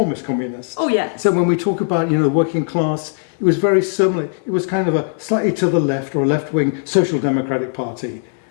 communist. Oh yeah. So when we talk about the working class, it was very similar. It was kind of a slightly to the left, or a left-wing social democratic party.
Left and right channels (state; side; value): silent; right; digital silence